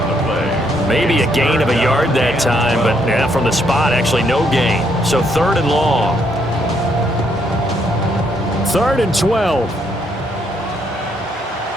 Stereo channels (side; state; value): both; normal; correlation 0.72